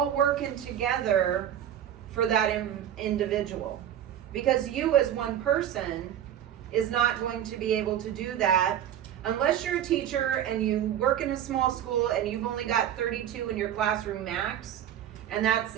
working together for that individual. Because you as one person is not going to be able to do that unless you're a teacher and you work in a small school and you've only got 32 in your classroom max, and that's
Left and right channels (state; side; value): quieter; left; 10.5 dB